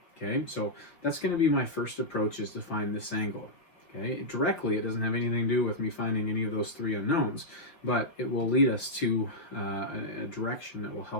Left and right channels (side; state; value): right; late; 5.2 ms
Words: Okay, so that's going to be my first approach, is to find this angle. Okay, directly it doesn't have anything to do with me finding any of those three unknowns, but it will lead us to a direction that will